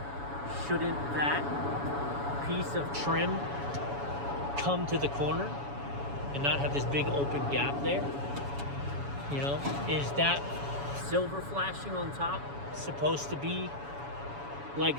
Shouldn't that piece of trim come to the corner and not have this big open gap there? You know, is that silver flashing on top supposed to be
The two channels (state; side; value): late; left; 7.1 ms